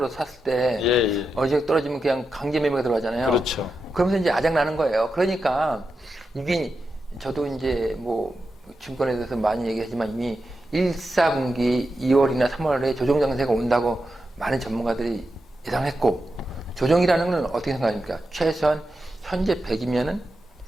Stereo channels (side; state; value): both; normal; correlation 0.88